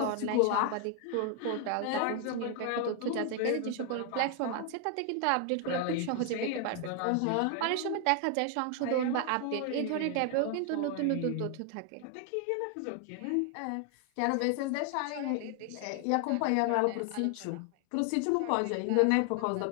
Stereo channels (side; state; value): both; different; correlation 0.00